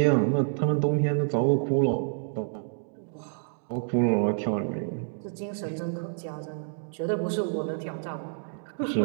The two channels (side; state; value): left; silent; digital silence